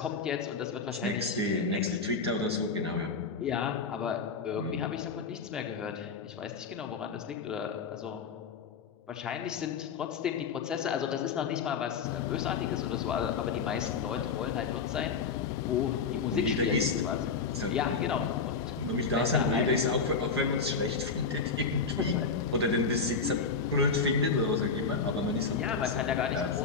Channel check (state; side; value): quieter; right; 5.2 dB